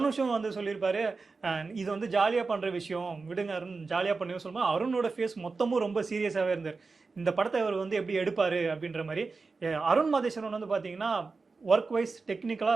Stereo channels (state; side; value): quieter; left; 4.2 dB